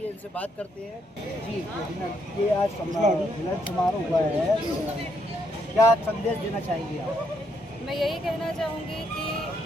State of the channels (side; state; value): both; normal; correlation 0.75